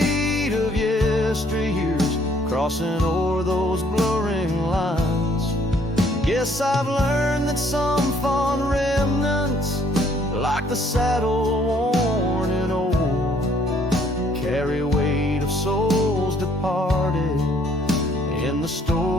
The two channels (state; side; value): normal; both; correlation 0.63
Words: of yesteryears crossing o'er those blurring lines. Guess I've learned that some fond remnants, like the saddle worn and old, carry weight of souls departed in the